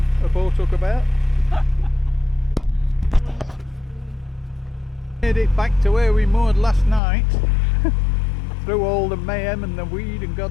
boat hook about. Made it back to where we moored last night through all the mayhem and the weed and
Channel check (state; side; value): drops out; right; at 7.0 s